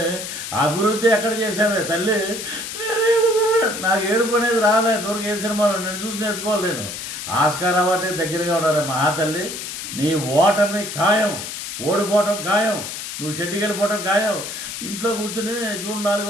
అభివృద్ధి ఎక్కడ చేసావే తల్లి? నాకు ఏడుపు అనేది రాలే దూరకు ఏ సినిమాలో నేను చూసి నేర్చుకోవాలి. నేను ఆస్కార్ అవార్డు దగ్గరగా ఉన్నారు మహాతల్లి. నీ ఓటమి ఖాయం, ఓడిపోవటం ఖాయం, నువ్వు షెడ్డికి వెళ్ళిపోవటం ఖాయం. ఇంట్లో కూర్చుని జూన్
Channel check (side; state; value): left; noise; hiss, 7 dB below the sound